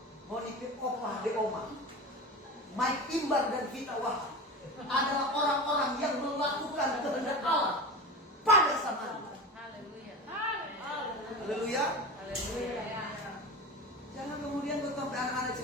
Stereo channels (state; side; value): normal; both; correlation 0.29